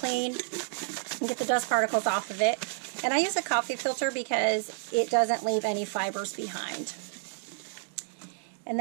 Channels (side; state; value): left; silent; digital silence